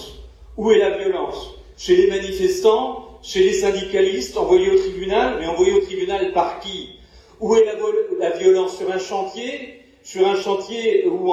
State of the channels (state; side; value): identical; both; correlation 1.00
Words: Où est la violence? Chez les manifestants, chez les syndicalistes, envoyés au tribunal, mais envoyés au tribunal par qui? Où est la violence? Sur un chantier où